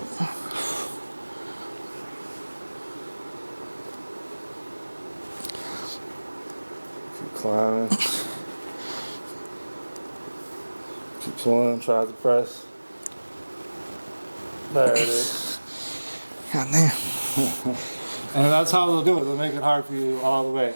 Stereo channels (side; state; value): both; inverted; correlation -1.00